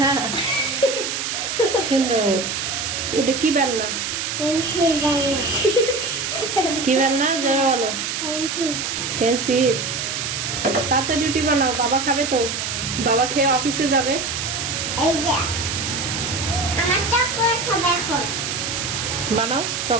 সুন্দর। ওটা কি বেলনা? পেন্সিল বেলনা। কি বেলনা জোরে বলো। পেন্সিল। পেন্সিল। তাড়াতাড়ি রুটি বানাও, বাবা খাবে তো। বাবা খেয়ে অফিসে যাবে। এই যে আমার চকলেট হবে এখন। বানাও,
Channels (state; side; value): noise; right; hiss, 3 dB below the sound